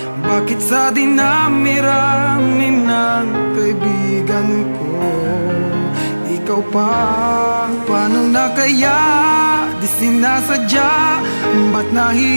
Bakit sa dinami-rami ng kaibigan ko, ikaw pa? Paano na kaya? Di sinasadya, ba't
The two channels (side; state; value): both; inverted; correlation -1.00